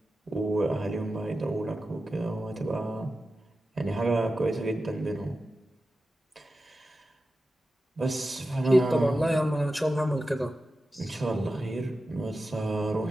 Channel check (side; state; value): both; normal; correlation 0.92